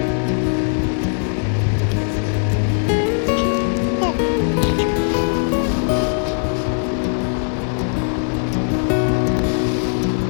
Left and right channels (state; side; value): silent; right; digital silence